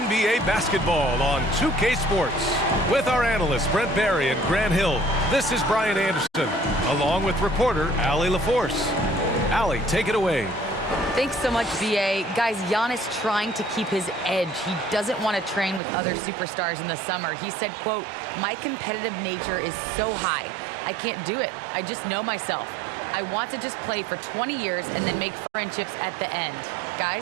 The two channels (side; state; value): left; drops out; at 15.8 s